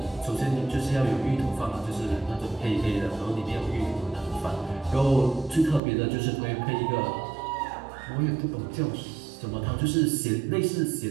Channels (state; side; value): drops out; left; at 5.8 s